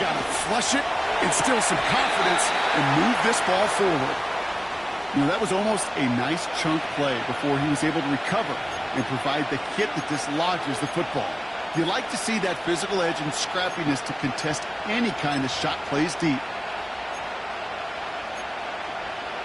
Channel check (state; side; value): identical; both; correlation 1.00